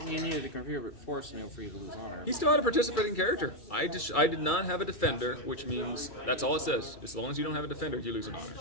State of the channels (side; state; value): right; late; 2.3 ms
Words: you needed to contribute force in order for you to lose honor. He still had a participating character. I did not have a defender, which means that's all it says. As long as you don't have a defender, you lose an